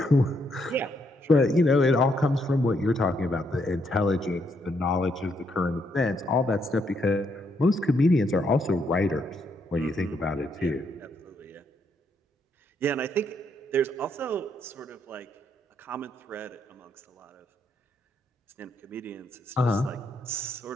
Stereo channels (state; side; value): normal; both; correlation 0.75